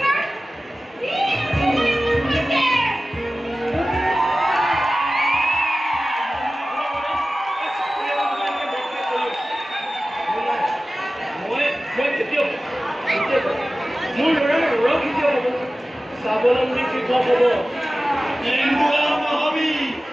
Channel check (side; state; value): both; normal; correlation 0.96